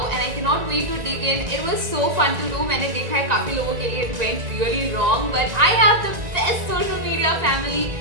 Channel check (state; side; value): late; left; 1.9 ms